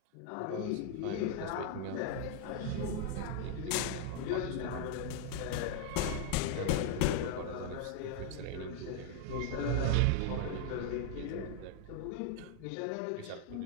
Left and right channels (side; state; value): both; different; correlation 0.00